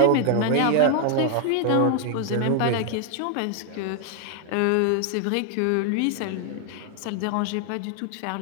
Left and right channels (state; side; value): different; both; correlation 0.00